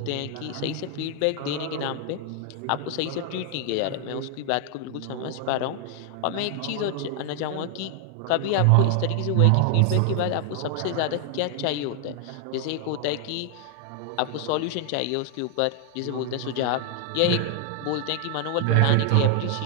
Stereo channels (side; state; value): both; different; correlation 0.00